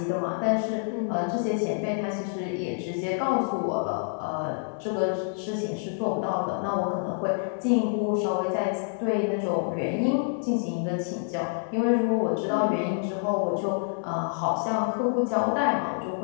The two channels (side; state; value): right; silent; 60 dB below the other